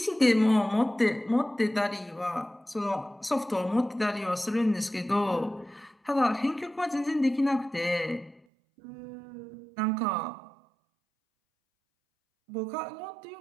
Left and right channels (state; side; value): drops out; left; at 8.4 s